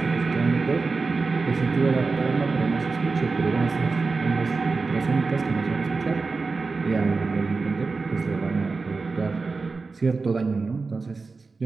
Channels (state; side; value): quieter; left; 4.2 dB